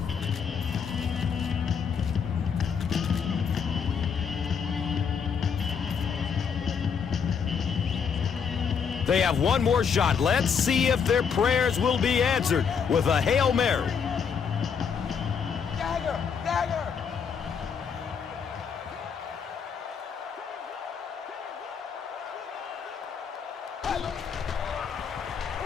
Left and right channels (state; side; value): quieter; right; 6.6 dB